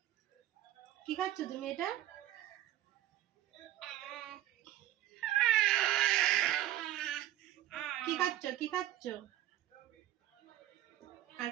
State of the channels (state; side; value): quieter; left; 13.6 dB